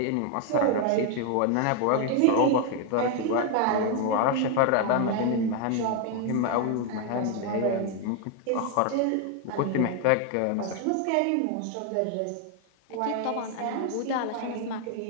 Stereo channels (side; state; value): both; different; correlation 0.00